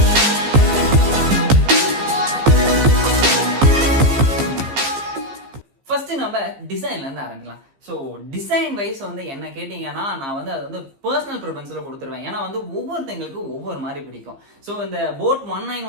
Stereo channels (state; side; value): late; left; 15 ms